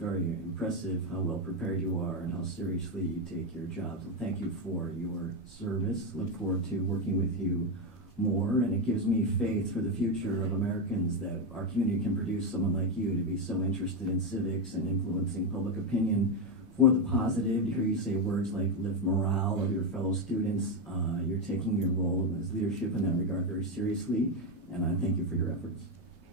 impressive how well prepared you are and how seriously you take your job. So thank you for your service. Look forward to working with you more, and it gives me faith for the future of Americans that our community can produce someone like you to be so interested in civics and influencing public opinion for the positive. To hear you say words like lift morale of your fellow students, you're taking your role as leadership in that regard very seriously, and I thank you for your efforts.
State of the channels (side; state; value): both; normal; correlation 0.09